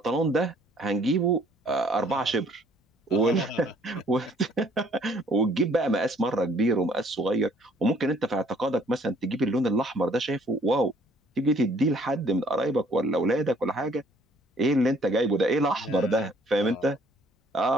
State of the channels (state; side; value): normal; both; correlation 0.60